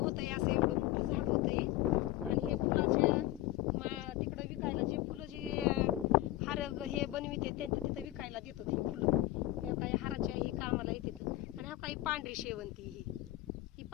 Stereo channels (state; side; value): quieter; right; 16.4 dB